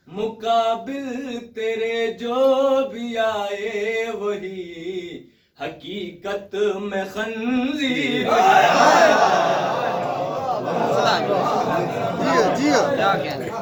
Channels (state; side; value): identical; both; correlation 1.00